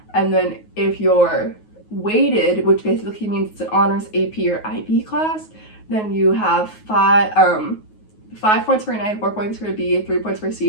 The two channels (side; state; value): right; late; 9.4 ms